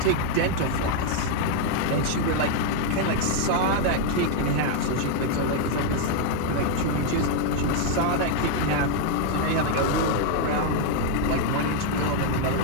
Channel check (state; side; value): different; both; correlation 0.00